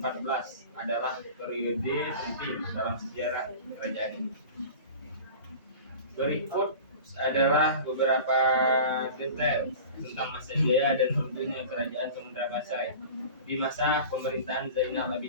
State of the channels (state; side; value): inverted; both; correlation -0.37